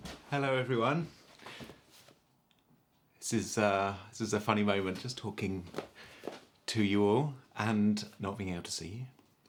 Hello everyone. This is a funny moment, just talking to you all and not being able to see you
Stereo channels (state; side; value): identical; both; correlation 1.00